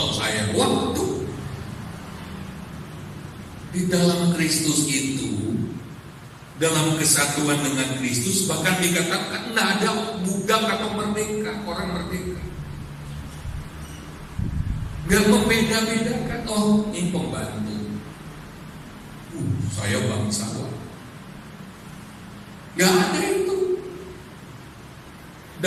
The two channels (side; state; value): both; identical; correlation 1.00